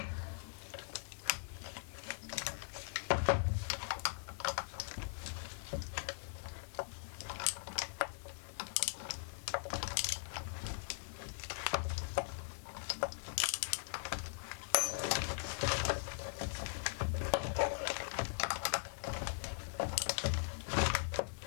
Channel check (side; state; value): right; silent; 51 dB below the other